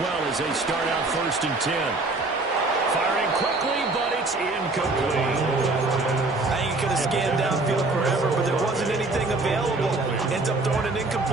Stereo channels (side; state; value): left; quieter; 3.2 dB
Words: as they start out first and 10. Firing quickly, but it's incomplete. I think he could have scanned downfield forever, but there wasn't anything available. Ends up throwing an